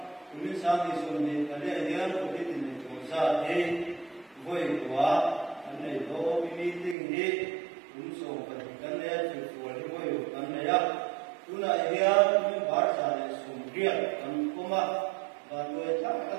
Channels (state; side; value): drops out; left; at 7.0 s